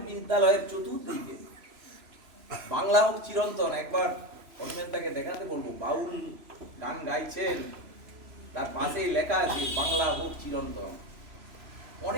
বিদ্যালয়ের চতুর্দিকে বাংলা হোক চিরন্তন, একবার অনিমেন্তাকে দেখাতে বলবো, বাউল গান গাইছেন, তার পাশেই লেখা আছে বাংলা হোক চিরন্তন।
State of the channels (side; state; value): left; late; 3.0 ms